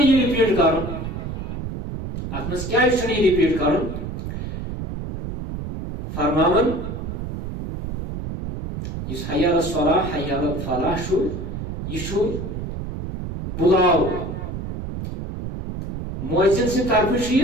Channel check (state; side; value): noise; right; rumble, 6 dB below the sound